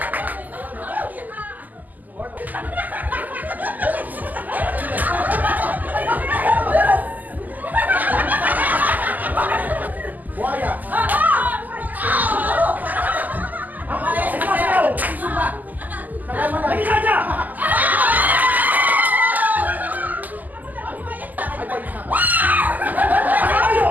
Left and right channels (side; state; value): left; late; 0.082 ms